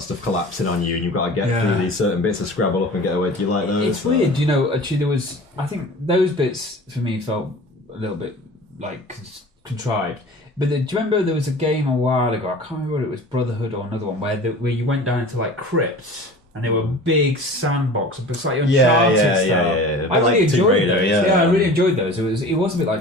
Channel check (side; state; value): both; normal; correlation 0.40